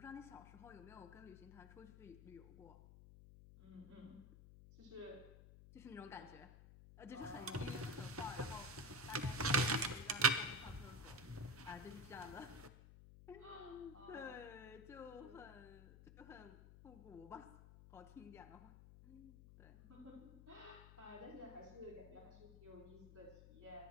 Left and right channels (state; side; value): noise; left; hum, 15 dB below the sound